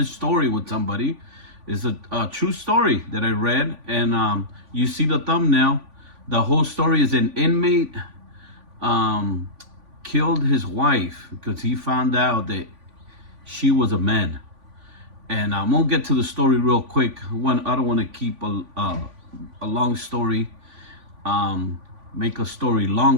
story with somebody. It's a true story that I read, and you see the thumbnail. The whole story is an inmate killed his wife because he found out that she was a man. And I'm gonna get to the story real quick. I don't want to keep a long story, make a story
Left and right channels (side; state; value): left; late; 3.5 ms